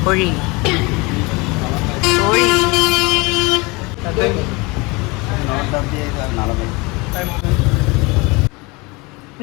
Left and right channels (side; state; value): right; quieter; 25.4 dB